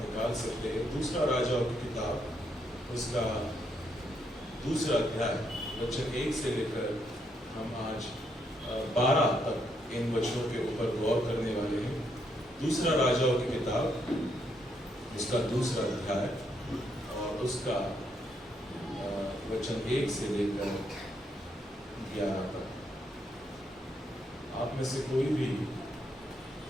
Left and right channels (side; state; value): both; normal; correlation 0.76